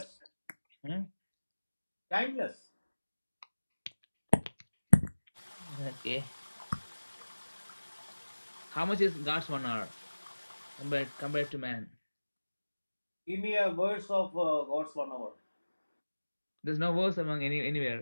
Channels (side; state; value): both; inverted; correlation -1.00